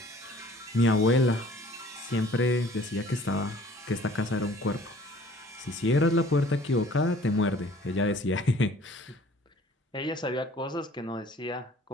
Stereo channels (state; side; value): normal; both; correlation 0.53